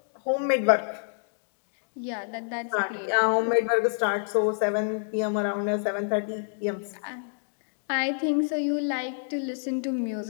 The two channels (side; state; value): right; silent; digital silence